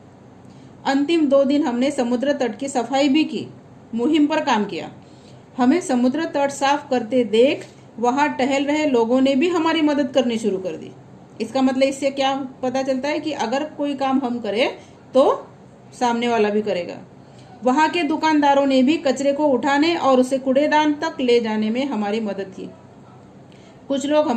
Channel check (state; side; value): identical; both; correlation 1.00